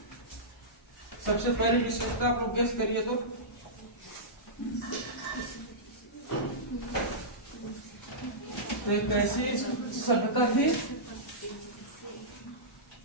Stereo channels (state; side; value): normal; both; correlation -0.15